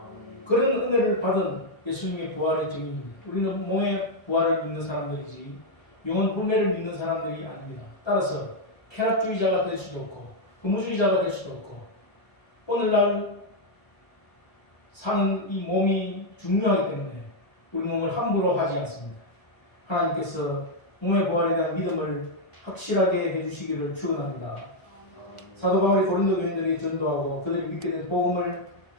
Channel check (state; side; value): late; right; 1.3 ms